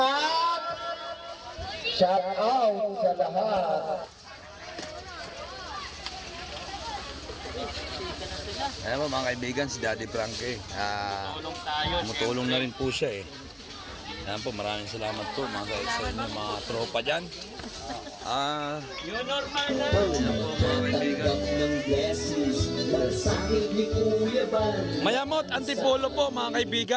at shout out sa lahat. Ayan po mga kaibigan, si Daddy Frankie. Tumutulong na rin po siya eh. Ayan po, maraming salamat po mga kaibigan, mga tropa dyan. Ayan po mga kaibigan. Mayamot Antipolo po mga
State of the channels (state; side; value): identical; both; correlation 1.00